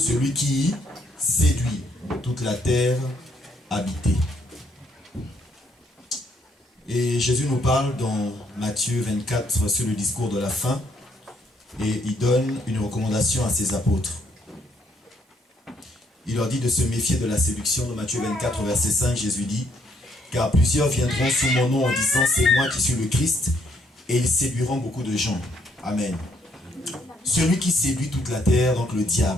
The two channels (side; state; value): both; normal; correlation 0.71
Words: qui séduit toute la terre habitée. Et Jésus nous parle dans Matthieu 24 sur le discours de la fin. Et il donne une recommandation à ses apôtres. Il leur dit de se méfier de la séduction. Dans Matthieu 24, verset 5, Jésus dit: car plusieurs viendront sous mon nom en disant c'est moi qui suis le Christ, et ils séduiront beaucoup de gens. Amen. Celui qui séduit toute la terre, donc le